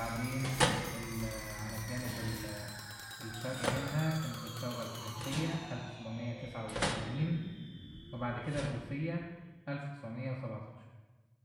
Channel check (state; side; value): identical; both; correlation 1.00